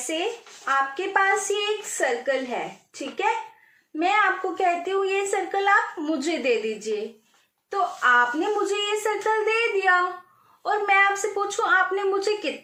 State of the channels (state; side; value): identical; both; correlation 1.00